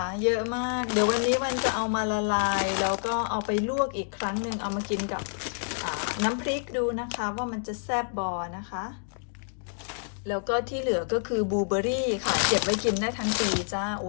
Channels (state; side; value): silent; right; digital silence